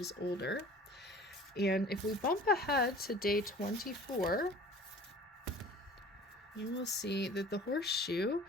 is older. And if we bump ahead to day 24, you will see that the horseshoe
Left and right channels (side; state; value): both; normal; correlation 0.45